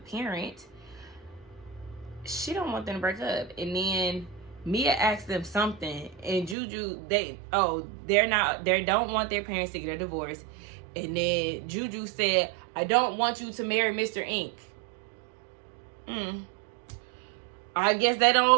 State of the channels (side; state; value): left; drops out; at 6.6 s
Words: She don't want them to break up. And then Mia asked them something, and Juju, they don't want their parents to get a divorce. And then Juju said, I don't want you to marry Mr. Ink. I guess they don't